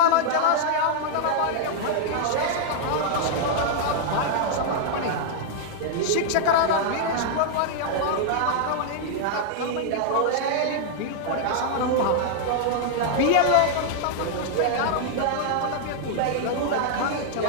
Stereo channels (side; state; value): both; different; correlation -0.01